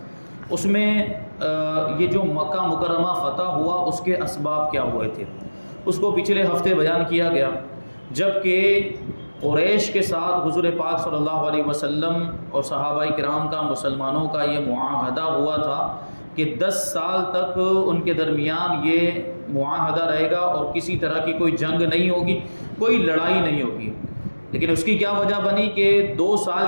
اس میں یہ جو مکہ مکرمہ فتح ہوا اس کے اسباب کیا ہوئے تھے اس کو پچھلے ہفتے بیان کیا گیا، جبکہ قریش کے ساتھ حضور پاک صلی اللہ علیہ وسلم اور صحابہ کرام کا مسلمانوں کا یہ معاہدہ ہوا تھا کہ 10 سال تک ان کے درمیان یہ معاہدہ رہے گا اور کسی طرح کی کوئی جنگ نہیں ہوگی، کوئی لڑائی نہیں ہوگی۔ لیکن اس کی کیا وجہ بنی کہ 2 سال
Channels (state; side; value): inverted; both; correlation -1.00